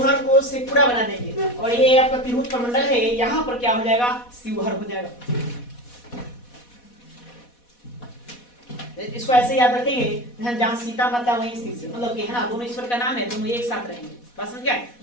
को शेखपुरा बना देंगे, और ये आपका तिरहुत प्रमंडल है, यहाँ पर क्या हो जाएगा? शिवहर हो जाएगा। इसको ऐसे याद रखेंगे, जहां सीता माता वहीं स्थित, मतलब कि है ना, दोनों ईश्वर का नाम है, दोनों एक साथ रहेंगे। बात समझ गए?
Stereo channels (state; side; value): late; right; 4.1 ms